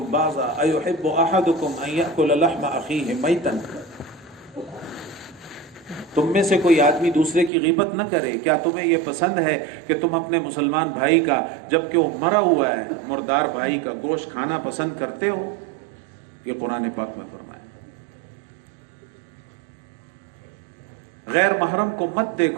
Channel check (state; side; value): drops out; left; at 7.5 s